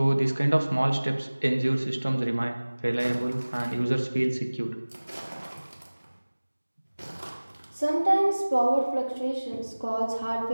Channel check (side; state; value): both; inverted; correlation -1.00